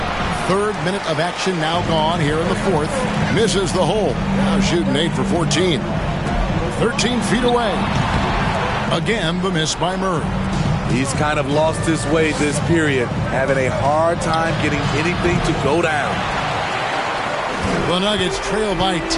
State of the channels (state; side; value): identical; both; correlation 1.00